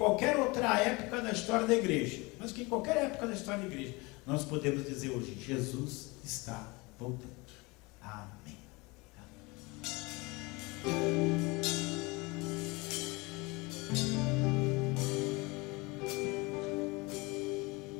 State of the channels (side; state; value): right; quieter; 25.3 dB